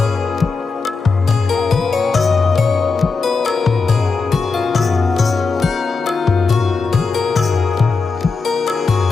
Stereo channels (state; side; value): quieter; right; 4.4 dB